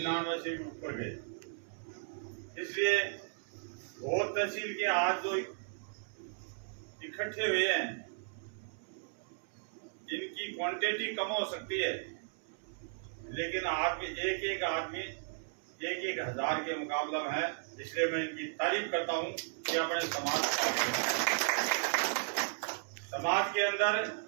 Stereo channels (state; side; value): silent; left; 54 dB below the other